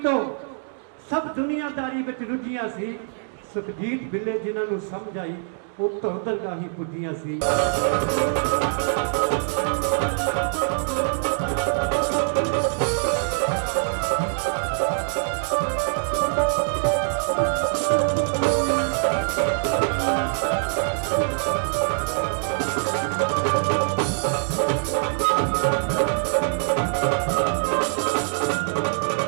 ਤੋਂ, ਸਭ ਦੁਨੀਆਦਾਰੀ ਵਿੱਚ ਰੁੱਝੀਆਂ ਸੀ। ਸੁਖਜੀਤ ਬਿੱਲੇ ਜਿਨ੍ਹਾਂ ਨੂੰ ਸਮਝ ਆਈ ਉਹ ਤੋਂ ਦਰਗਾਹ ਹੀ ਪੁੱਜੀਆਂ ਸੀ।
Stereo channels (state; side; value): silent; left; digital silence